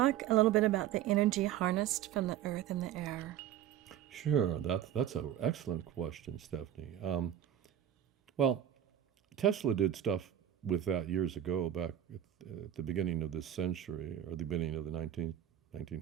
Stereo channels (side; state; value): left; quieter; 10.9 dB